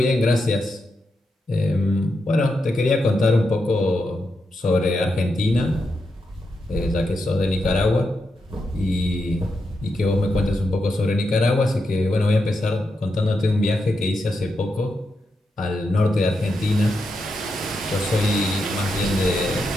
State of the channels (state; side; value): normal; both; correlation 0.85